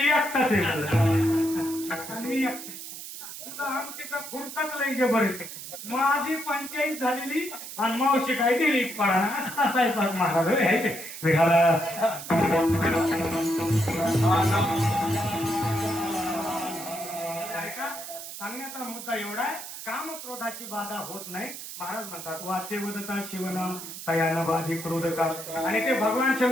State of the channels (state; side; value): noise; right; hiss, 10 dB below the sound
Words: आहे. आणि मी तुझा आमटीचा फुरकाच लई जबर आहे. माझी पंचायत झालेली आणि मावशी काय दिली पाडा असं असायचा महाराज आहे ते विघाला. सांगण्याचा मुद्दा एवढा आहे, काम क्रोधाची बाधा होत नाही. महाराज म्हणतात वाचे वदता शिवनाम तयान बाधी क्रोध का. आणि ते भगवान